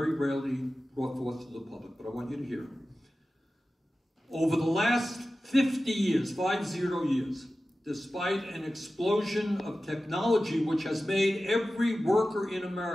rarely brought forth to the public, but I want you to hear it. Over the last 50 years, 50 years, despite an explosion of technology which has made every worker in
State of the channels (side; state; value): both; normal; correlation 0.95